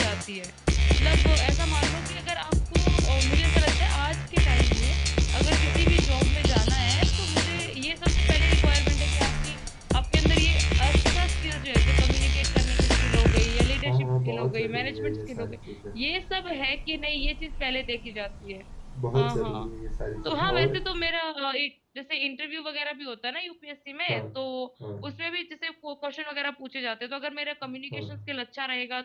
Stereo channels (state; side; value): identical; both; correlation 1.00